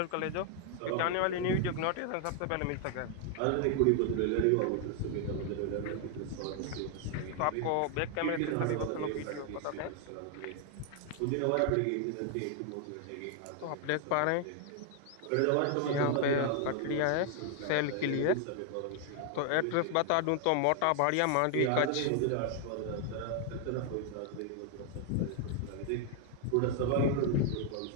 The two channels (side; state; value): both; different; correlation 0.00